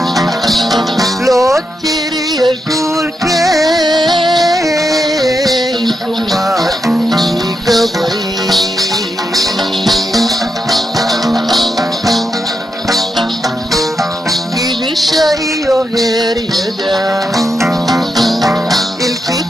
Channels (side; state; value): both; normal; correlation 0.84